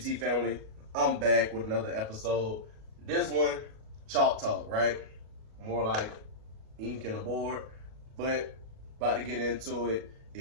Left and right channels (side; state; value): left; late; 37 ms